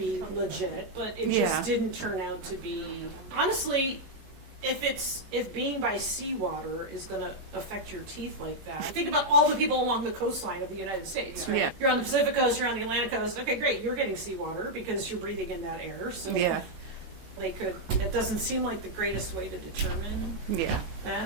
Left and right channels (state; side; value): late; left; 23 ms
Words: legit, but it Yeah. just didn't turn out to be. Honestly, if being by seawater is going to affect your teeth like that, think about all the people along the coastline of the United States. Right? Yeah. You're on the Pacific coast, you're on the Atlantic coast. Okay, great. You're getting seawater because you're breathing in that air. So Yeah. they could. It doesn't seem like the greatest way to determine Yeah.